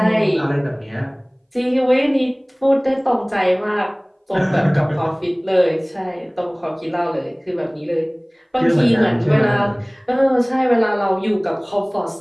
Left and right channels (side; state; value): both; identical; correlation 1.00